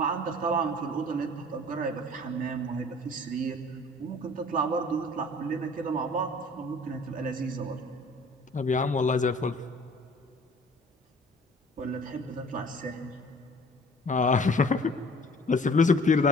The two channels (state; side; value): normal; both; correlation 0.50